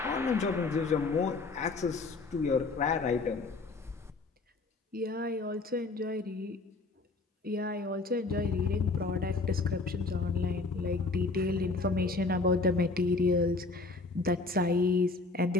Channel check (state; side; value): quieter; right; 3.6 dB